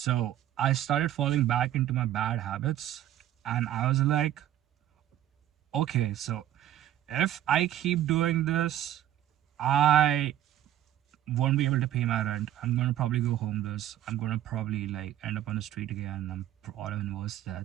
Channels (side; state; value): left; quieter; 12.2 dB